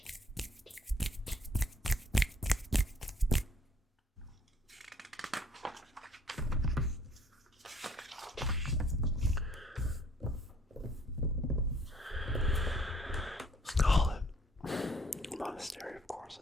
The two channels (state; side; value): normal; both; correlation 0.61